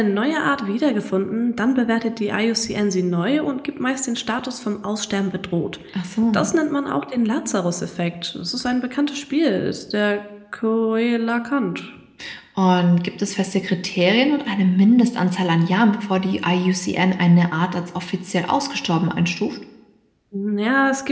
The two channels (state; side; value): identical; both; correlation 1.00